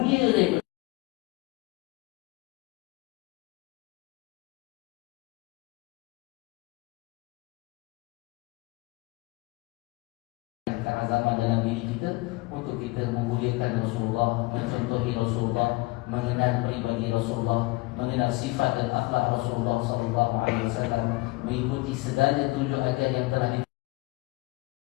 daripada keazaman dalam diri kita untuk kita memuliakan Rasulullah, mencontohi Rasulullah, mengenal pribadi Rasulullah, mengenal sifat dan akhlak Rasulullah sallallahu alaihi wasallam, mengikuti segala tunjuk ajar yang telah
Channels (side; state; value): right; quieter; 22.9 dB